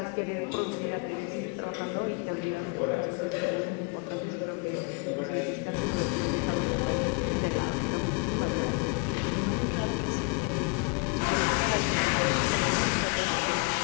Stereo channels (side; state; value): right; quieter; 30.7 dB